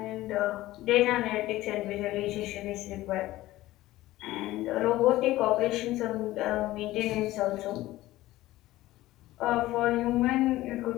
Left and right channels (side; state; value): right; quieter; 16.5 dB